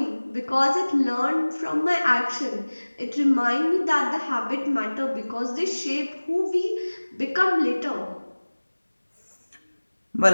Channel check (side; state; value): both; inverted; correlation -1.00